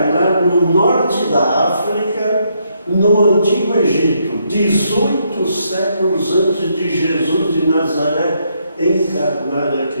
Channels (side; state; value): both; inverted; correlation -0.75